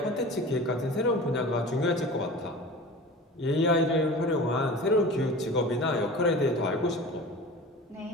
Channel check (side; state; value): both; normal; correlation 0.37